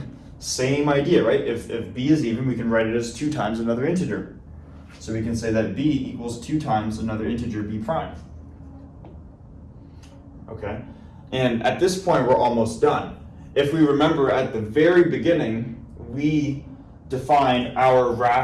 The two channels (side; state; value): both; identical; correlation 1.00